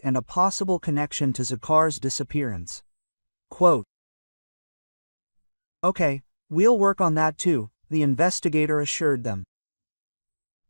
and a possible connection to Zakhar's disappearance. Quote, "Okay, we'll work on that too," the investigator assured them.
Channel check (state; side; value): inverted; both; correlation -1.00